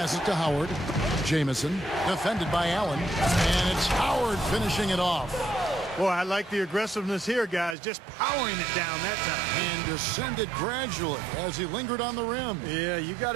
to Howard. Jamison, defended by Allen. And it's Howard finishing it off. Boy, I like the aggressiveness here, guys. Just powering it down that time. And descended gradually as he lingered on the rim. Yeah, you got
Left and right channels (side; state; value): left; drops out; at 7.8 s